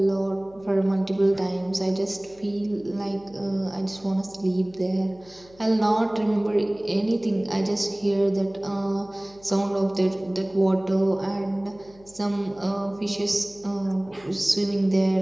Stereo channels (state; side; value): noise; left; hum, 26 dB below the sound